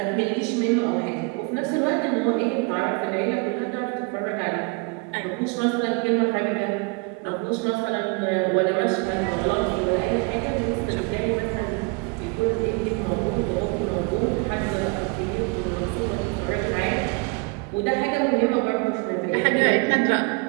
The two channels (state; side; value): quieter; left; 30.4 dB